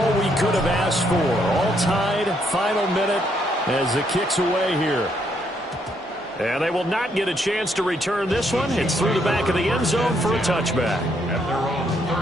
we could have asked for. All tied, final minute as the kick's away here. And they will not get a chance to return this one. It's through the back of the end zone for a touchback. At their own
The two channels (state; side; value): normal; both; correlation 0.73